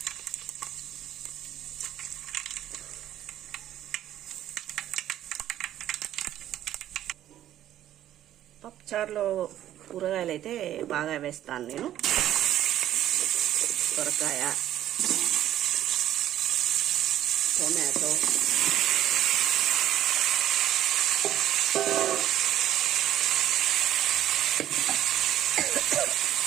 పప్పుచారులో కూరగాయలు అయితే బాగా వేస్తాను నేను. సొరకాయ, టొమాటో,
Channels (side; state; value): left; quieter; 12.2 dB